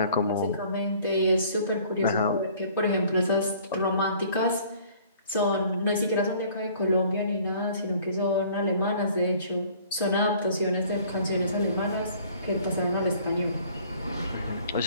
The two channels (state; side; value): inverted; both; correlation -0.54